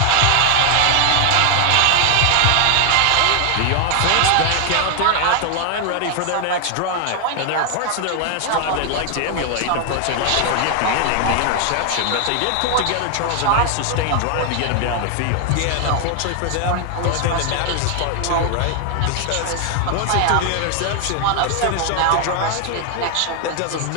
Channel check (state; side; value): different; both; correlation 0.00